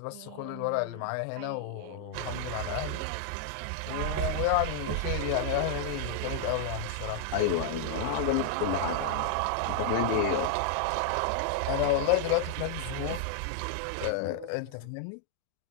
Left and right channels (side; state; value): both; different; correlation 0.00